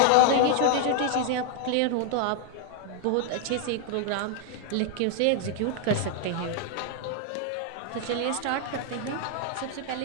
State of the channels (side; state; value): both; different; correlation 0.00